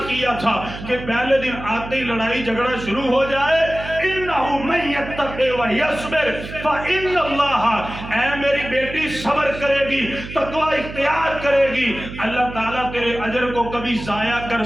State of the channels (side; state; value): right; noise; hum, 11 dB below the sound